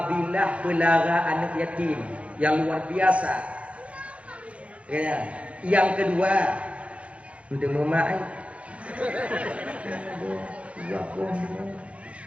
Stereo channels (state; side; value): late; left; 0.063 ms